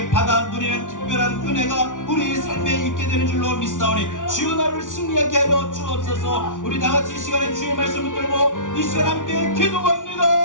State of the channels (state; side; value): late; right; 0.87 ms